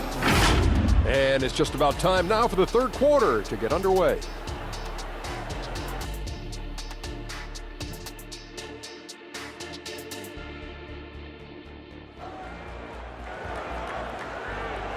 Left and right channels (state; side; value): identical; both; correlation 1.00